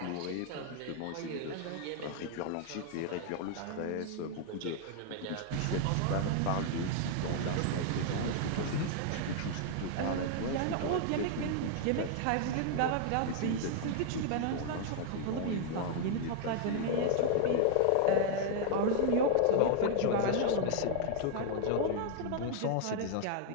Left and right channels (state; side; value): different; both; correlation 0.00